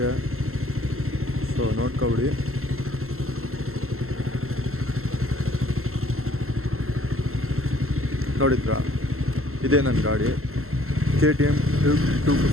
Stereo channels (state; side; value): late; left; 0.62 ms